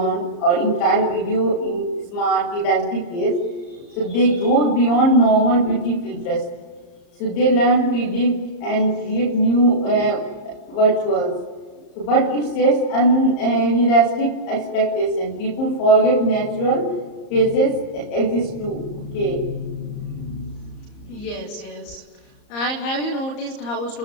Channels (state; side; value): late; right; 34 ms